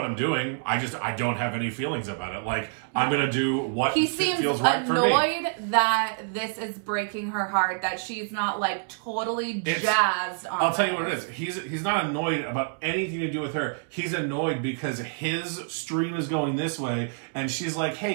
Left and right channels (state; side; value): silent; left; 60 dB below the other